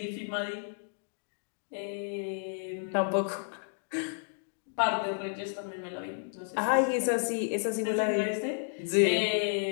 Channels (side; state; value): right; silent; digital silence